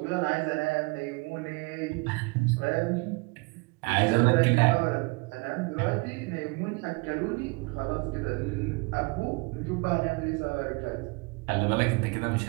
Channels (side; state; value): left; quieter; 28.5 dB